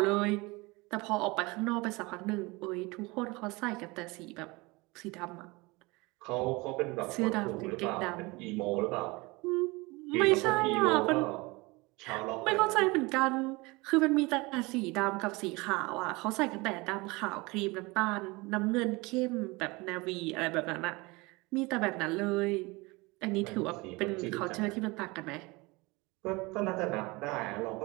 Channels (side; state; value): left; quieter; 24.4 dB